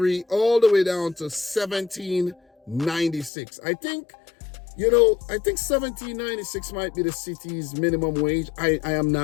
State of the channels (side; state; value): right; drops out; at 3.3 s